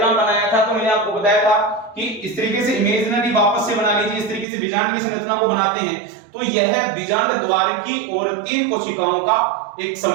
बनाया था तो मैंने आपको बताया था कि इस तरीके से इमेजिनरी वापस से बना लीजिए, इस तरीके से बीजांड की संरचना को बनाते हैं। तो यह बीजांड द्वार की ओर 3 कोशिकाओं का एक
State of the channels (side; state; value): left; drops out; at 4.5 s